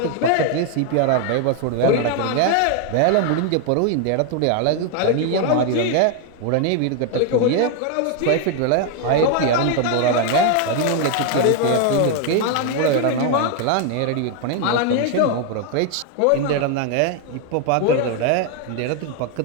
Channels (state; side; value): different; both; correlation 0.01